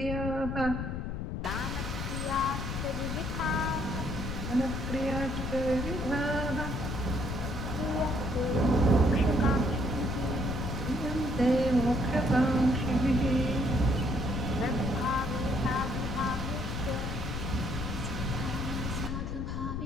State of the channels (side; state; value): left; noise; rumble, 4 dB below the sound